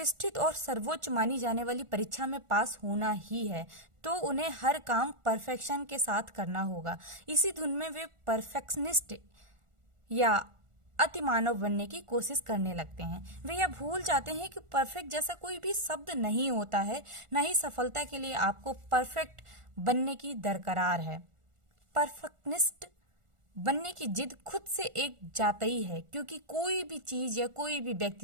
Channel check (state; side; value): late; left; 1.4 ms